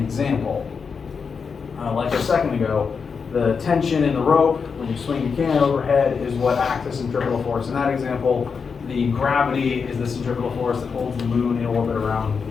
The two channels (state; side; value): quieter; right; 5.7 dB